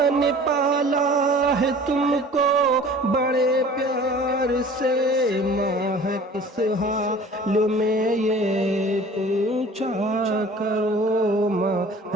نے پالا ہے تم کو بڑے پیار سے، ماں ہے کس حال میں یہ پوچھا کرو، ماں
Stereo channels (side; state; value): both; normal; correlation 0.46